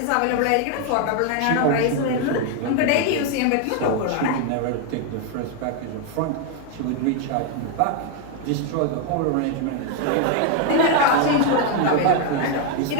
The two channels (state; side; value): different; both; correlation 0.01